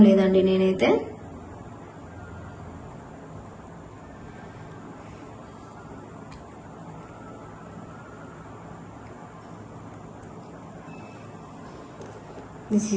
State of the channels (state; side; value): identical; both; correlation 1.00